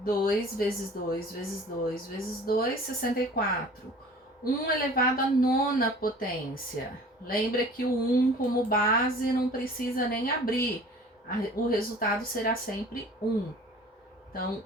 vezes 2 vezes 2 vezes 2, 64. 1 elevado à nona potência. Lembra que o 1 como base não precisa nem abrir. O resultado será sempre 1. Então,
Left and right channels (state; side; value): normal; both; correlation 0.46